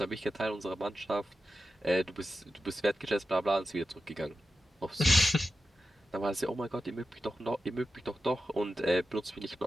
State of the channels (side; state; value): both; normal; correlation 0.91